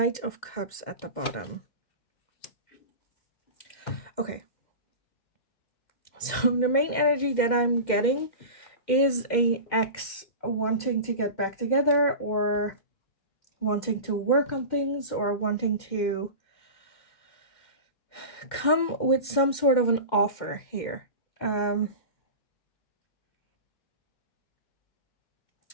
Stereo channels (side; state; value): right; late; 2.1 ms